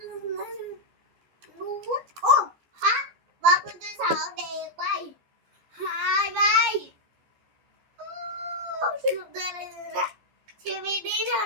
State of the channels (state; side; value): late; left; 14 ms